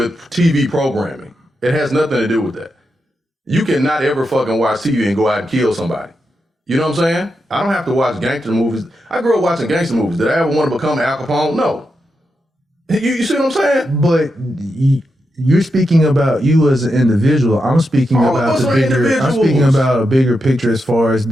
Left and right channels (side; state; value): both; normal; correlation 0.86